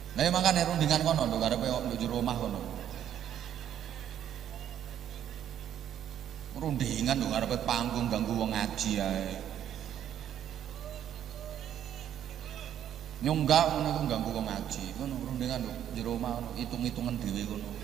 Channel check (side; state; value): left; quieter; 10.3 dB